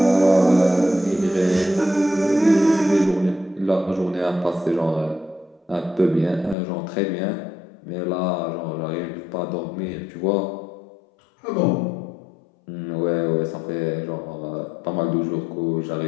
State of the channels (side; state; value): right; drops out; at 6.6 s